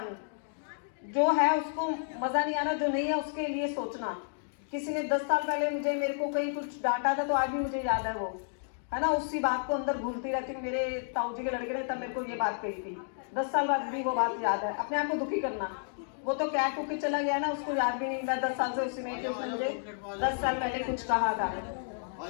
जो है उसको मजा नहीं आना, जो नहीं है उसके लिए सोचना। किसी ने 10 साल पहले मेरे को कहीं कुछ डांटा था तो आज भी मुझे याद है वो, है ना, उसी बात को अंदर भूलती रहती हूँ। मेरे ताऊ जी के लड़के ने तब मेरे को ये बात कही थी, 10 साल बाद भी वो बात याद है। अपने आप को दुखी करना, वो तो क्या कुछ चला गया ना, उसको याद भी नहीं, मैं 10 साल से उसी में कि उसने मुझे 10 साल पहले कुछ कहा था।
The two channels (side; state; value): right; silent; digital silence